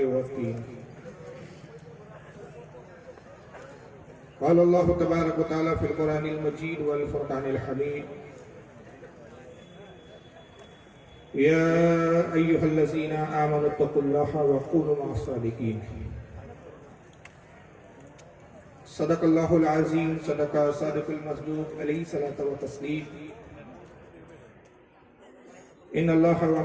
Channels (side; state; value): both; identical; correlation 1.00